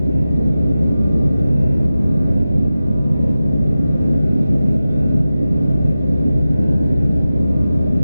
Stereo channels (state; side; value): inverted; both; correlation -0.94